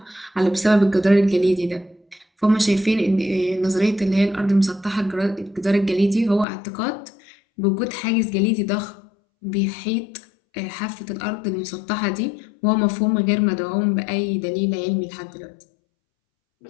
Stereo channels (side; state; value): right; drops out; at 6.5 s